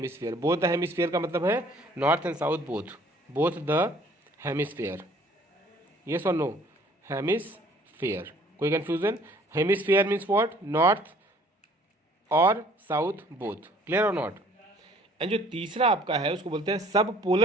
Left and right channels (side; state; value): both; normal; correlation 0.56